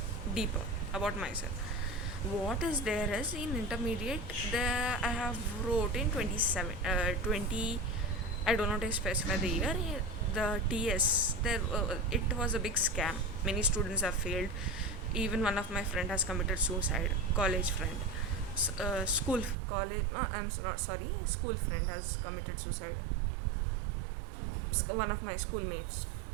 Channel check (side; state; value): left; drops out; at 19.6 s